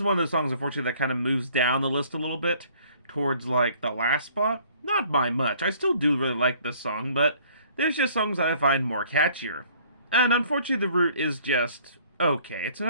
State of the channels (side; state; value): both; inverted; correlation -0.57